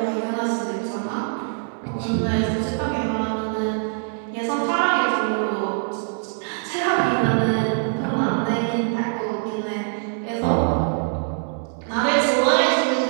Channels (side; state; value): left; silent; 58 dB below the other